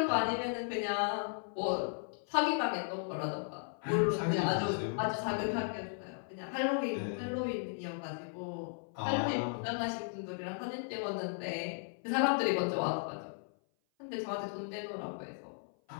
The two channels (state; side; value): silent; right; 54 dB below the other